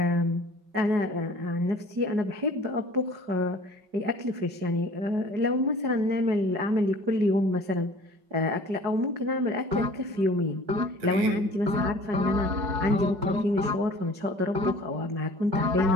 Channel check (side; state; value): left; late; 5.3 ms